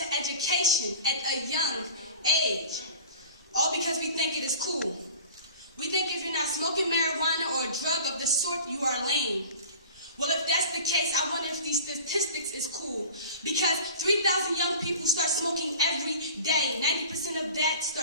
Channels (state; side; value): inverted; both; correlation -0.40